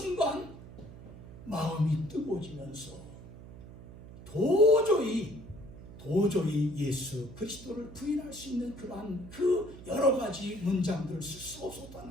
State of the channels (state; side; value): noise; right; hum, 16 dB below the sound